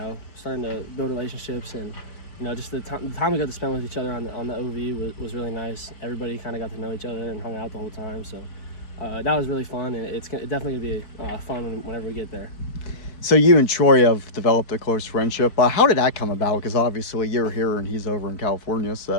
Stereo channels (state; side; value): late; right; 4.6 ms